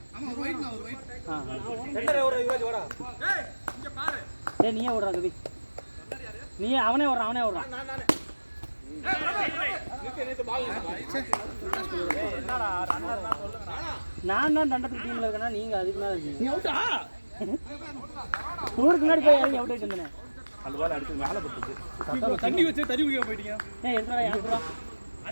ஆமா ஒரு ரைட் ஒரு ரைட். ரெண்டரை ஓடுற யுவராஜ் ஓடா. ஏய் இங்க பாரு. டேய் நீயே ஓடுறா கவி. நீ அவனே ஓடுறான். நானே. நான் தான் தண்டத்துக்கு டீம்ல இருக்கேன்னா நீங்க அதுக்கு மேல இருக்கீங்க. நீ அவுட்டா? ஊருக்கு முன்னாடி போய் இறங்கி அவுட் ஆயிட்டு வந்தேன். அந்த பால் அடிச்சு மேலே பட்டுச்சு. தண்ணி வச்சு தண்ணி குடிக்க போயிட்டீங்க. ஏய் எதுடா யாருடா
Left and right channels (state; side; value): inverted; both; correlation -1.00